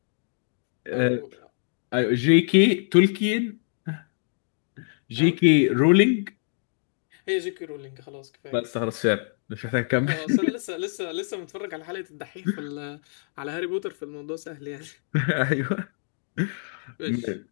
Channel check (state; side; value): silent; right; digital silence